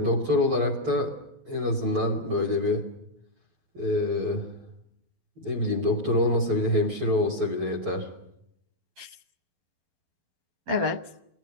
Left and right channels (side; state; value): left; late; 12 ms